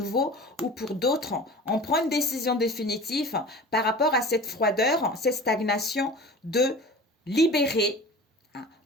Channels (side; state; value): both; normal; correlation 0.38